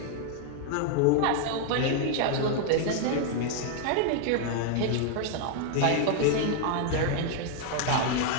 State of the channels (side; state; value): both; different; correlation 0.00